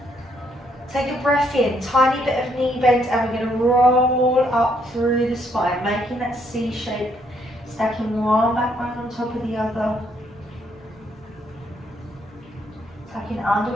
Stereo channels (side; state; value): both; normal; correlation 0.71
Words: Take a breath in, tiny bit of knee bend, and we're going to roll up through the spine, making that C shape, stacking one back bone on top of the other. Tucking under